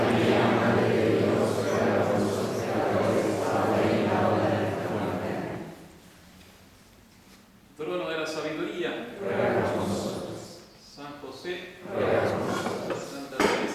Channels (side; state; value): both; identical; correlation 1.00